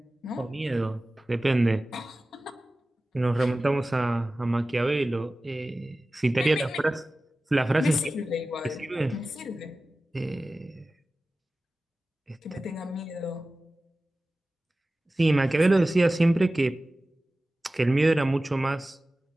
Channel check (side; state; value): both; normal; correlation 0.96